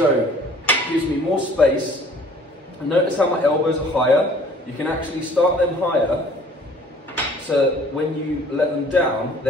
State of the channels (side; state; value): both; normal; correlation 0.53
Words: it gives me more space. And notice how my elbows are higher. You can actually start them higher, so when you let them down,